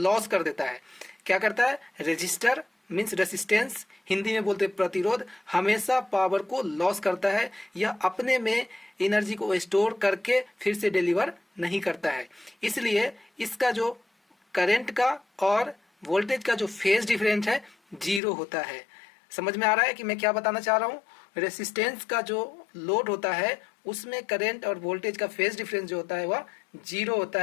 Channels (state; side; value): drops out; right; at 18.2 s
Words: कर देता है। क्या करता है? रेजिस्टर मीन्स रेसिस्टेंस, हिंदी में बोलते प्रतिरोध, हमेशा पावर को लॉस करता है। यह अपने में एनर्जी को स्टोर करके फिर से डिलीवर नहीं करता है। इसलिए इसका जो करंट का और वोल्टेज का जो फेज डिफरेंस है जीरो होता है। समझ में आ रहा है कि मैं क्या बताना चाह रहा हूँ? रेसिस्टेंस का जो लोड होता है उसमें करंट और वोल्टेज का फेज डिफरेंस जो होता है वह जीरो होता